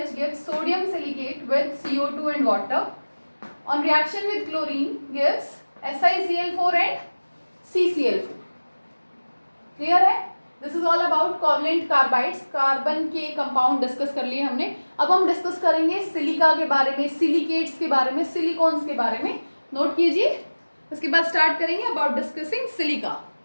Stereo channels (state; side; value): inverted; both; correlation -1.00